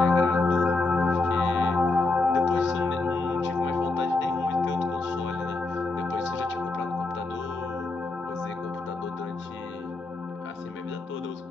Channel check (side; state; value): right; quieter; 3.4 dB